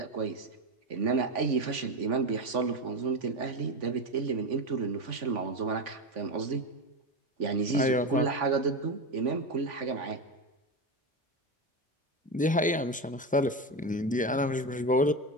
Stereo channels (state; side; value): normal; both; correlation 0.17